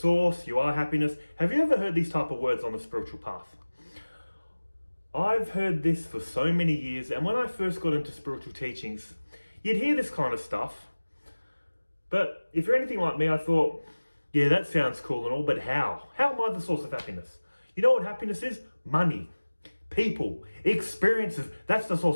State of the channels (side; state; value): both; inverted; correlation -1.00